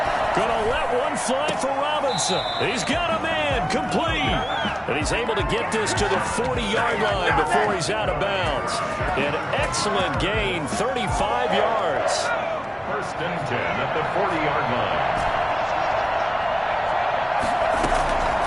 Gonna let one fly for Robinson. He's got a man, complete. And he's able to get this to the 40-yard line before he's out of bounds. An excellent gain, 35 yards. 1st and 10 at the 40-yard line.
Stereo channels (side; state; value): both; identical; correlation 1.00